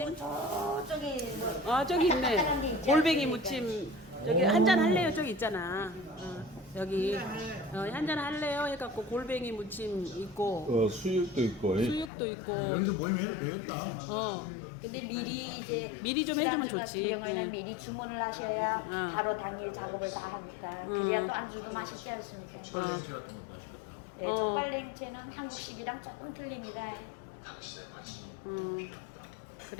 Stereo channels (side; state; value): right; drops out; at 12.1 s